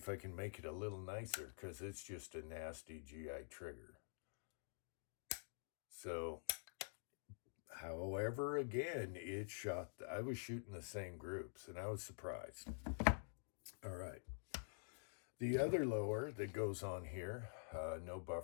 I can make it a little nicer, because it's just a nasty GI trigger. So, however, again, it shot, I was shooting the same groups, and I was surprised. All right. The other lower that goes on here, no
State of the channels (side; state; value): right; silent; digital silence